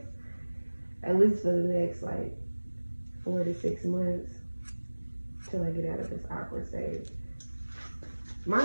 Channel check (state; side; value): inverted; both; correlation -1.00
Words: At least for the next like 4 to 6 months till I get out of this awkward stage. My